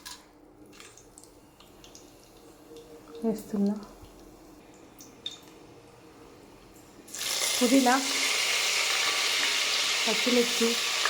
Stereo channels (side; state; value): both; identical; correlation 1.00